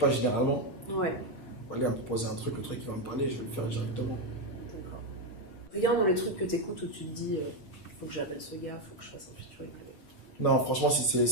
généralement. Ouais. Voilà, il va me proposer un truc, le truc, il va me parler, je vais le faire directement. D'accord. Regarde dans les trucs que t'écoutes où tu te dis, faut que j'appelle ce gars, faut que je fasse un featuring avec. Non, franchement, si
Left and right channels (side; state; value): right; late; 8.4 ms